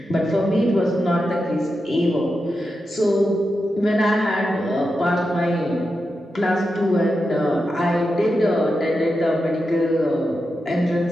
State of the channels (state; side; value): normal; both; correlation 0.89